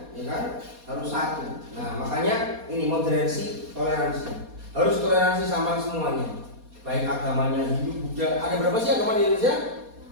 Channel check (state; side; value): late; left; 4.2 ms